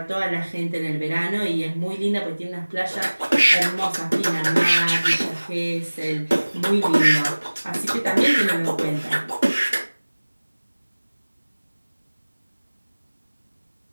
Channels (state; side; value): inverted; both; correlation -1.00